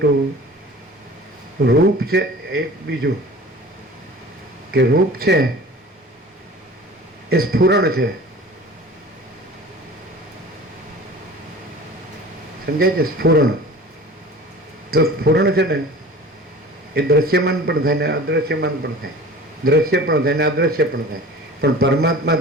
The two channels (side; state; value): both; normal; correlation 0.41